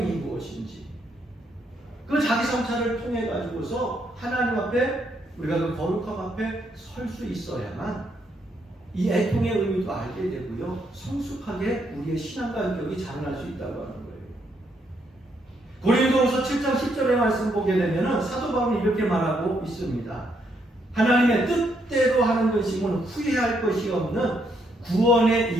무엇인지 그 자기 성찰을 통해 가지고서 하나님 앞에 우리가 그 거룩함 앞에 설 수 있어야만 이 애통의 의미도 알게 되고요, 성숙하게 우리의 신앙과 인격이 자라날 수 있다고 하는 거예요. 고린도후서 7장 10절의 말씀 보게 되면 사도 바울이 이렇게 말하고 있습니다. 하나님의 뜻대로 하는 것이면 후회할 것이 없는 구원에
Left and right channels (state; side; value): normal; both; correlation 0.75